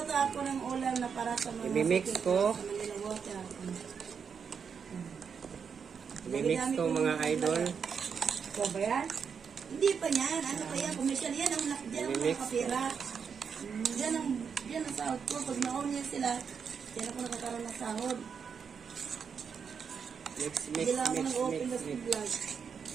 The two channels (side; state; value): left; quieter; 6.5 dB